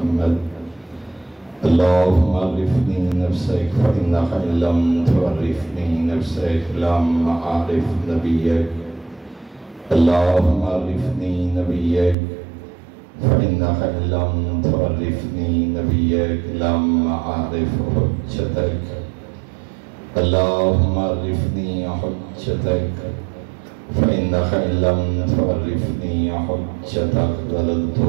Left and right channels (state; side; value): drops out; left; at 12.2 s